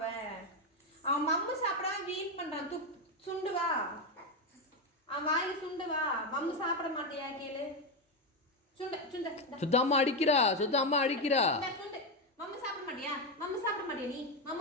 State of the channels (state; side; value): normal; both; correlation 0.09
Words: அவன் மம்மு சாப்பிடாம வீண் பண்றான். சுண்டு வா, அவன் வாயில சுண்டு வா. மம்மு சாப்பிட மாட்டியா கேளு. சுத்தம்மா அடிக்கிறா, சுத்தம்மா அடிக்கிறா. சுண்டு. மம்மு சாப்பிட மாட்டியா? மம்மு சாப்பிட மாட்டியா நீ?